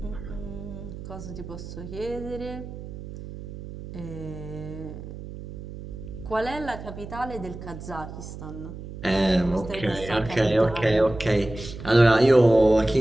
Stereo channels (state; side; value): noise; right; hum, 11 dB below the sound